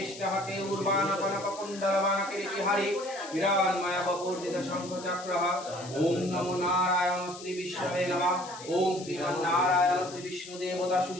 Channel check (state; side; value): noise; left; hiss, 15 dB below the sound